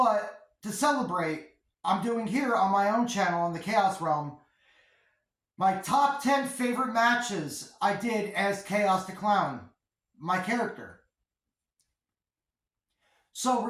to celebrate, I'm doing here on my own channel on the Chaos Realm my top 10 favorite matches I did as Chaos the Clown, my character. So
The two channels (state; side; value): identical; both; correlation 1.00